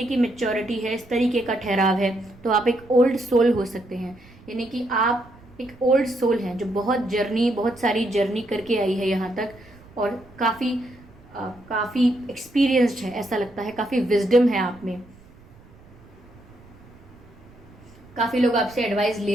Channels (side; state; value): right; noise; rumble, 24 dB below the sound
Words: की मेच्योरिटी है, इस तरीके का ठहराव है, तो आप एक ओल्ड सोल हो सकते हैं। यानी कि आप एक ओल्ड सोल हैं जो बहुत सारी जर्नी करके आई है यहाँ तक, और काफ़ी एक्सपीरियंस्ड है, ऐसा लगता है, काफ़ी विजडम है आप में। काफ़ी लोग आपसे एडवाइस